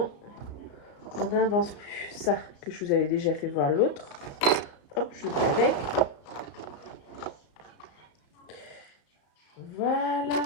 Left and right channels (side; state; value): right; late; 34 ms